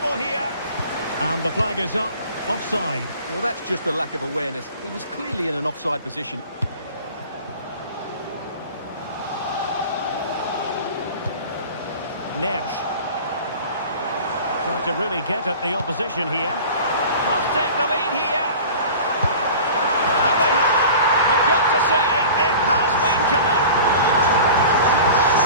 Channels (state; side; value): inverted; both; correlation -0.40